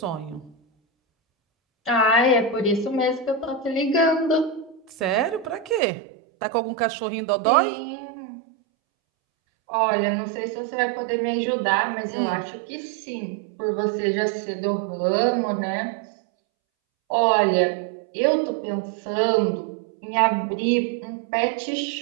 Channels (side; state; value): left; drops out; at 5.8 s